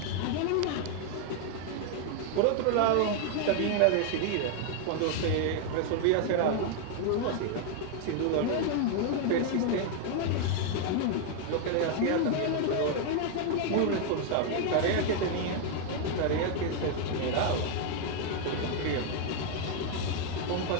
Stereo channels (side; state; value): both; different; correlation 0.00